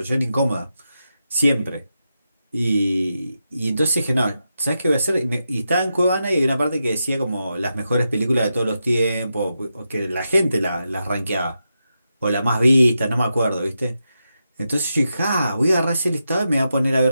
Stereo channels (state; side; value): inverted; both; correlation -0.87